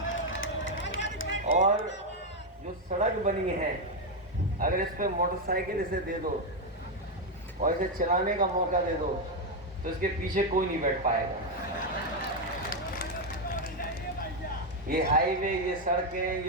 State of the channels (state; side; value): normal; both; correlation 0.05